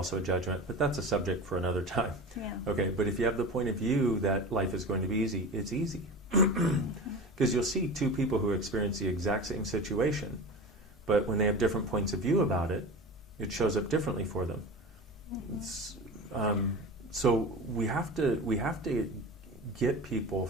a judgment, but that's a subject for another time. Okay, but if you have the point of view that life is going to be easy, it's easy. Because you'll see 2 people who experience the exact same situation, but when they have different points of view about it, it shows up differently for them. So we have to get people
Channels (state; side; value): normal; both; correlation 0.31